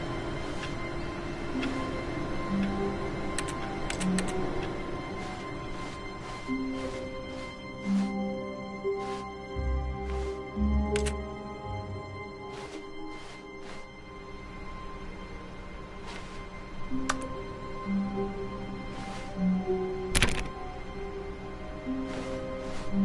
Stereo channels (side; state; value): both; identical; correlation 1.00